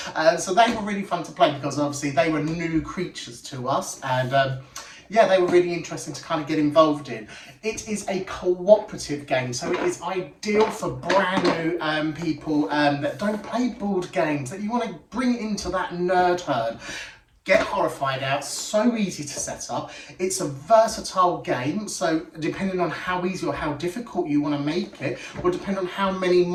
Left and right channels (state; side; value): identical; both; correlation 1.00